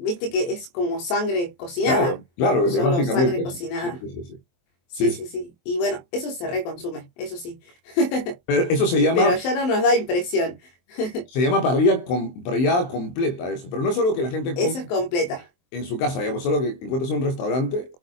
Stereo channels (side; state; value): right; late; 23 ms